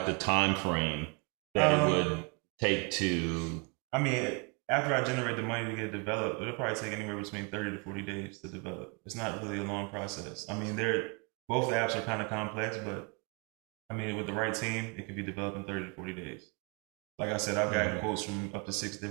the time frame that it would take to... after I generate the money to get it developed, it'll probably take anywhere between 30 to 40 days to develop. It's not really a long process. Both the apps are kind of complex, but with the right team, it could be developed in 30 to 40 days. Like I said, I've gotten quotes from up to 6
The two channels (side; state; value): left; quieter; 32.5 dB